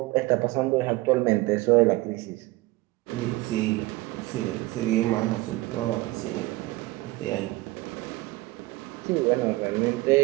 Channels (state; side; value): quieter; left; 20.4 dB